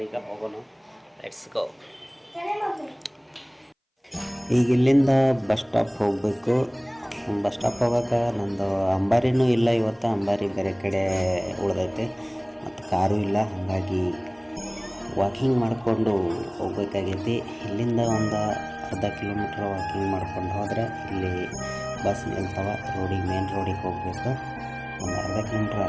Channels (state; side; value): identical; both; correlation 1.00